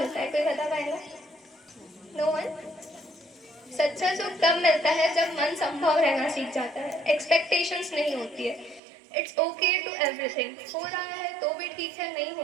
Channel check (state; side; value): drops out; left; at 8.8 s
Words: है, कोई बता पाएगा? No one? सच्चा सुख तब मिलता है जब मन संभव रहना सीख जाता है, एक्सपेक्टेशंस नहीं होती है। It's okay to everything. हो रहा है तो भी ठीक है, नहीं हो